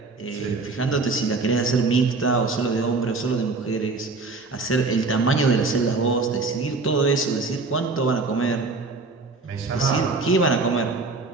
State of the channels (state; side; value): quieter; left; 3.8 dB